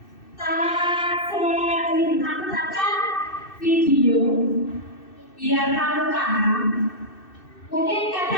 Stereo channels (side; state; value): right; late; 2.6 ms